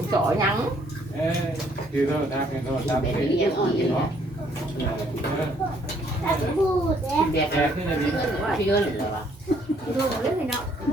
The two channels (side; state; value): both; normal; correlation 0.65